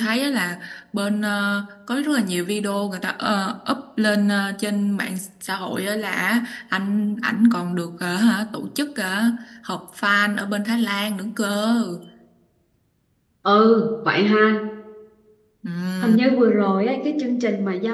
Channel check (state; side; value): identical; both; correlation 1.00